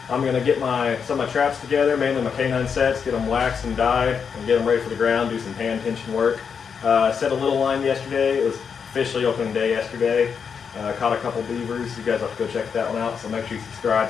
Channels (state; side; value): quieter; right; 6.5 dB